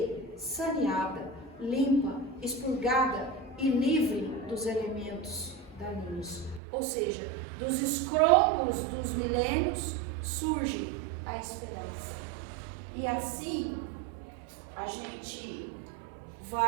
saneada, limpa, expurgada e livre dos elementos daninhos. Ou seja, dos escrombos dos milênios surge a esperança. E assim a gente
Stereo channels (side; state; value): left; drops out; at 6.6 s